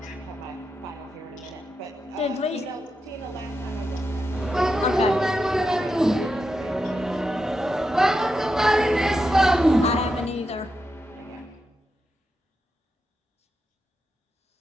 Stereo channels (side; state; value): both; normal; correlation 0.87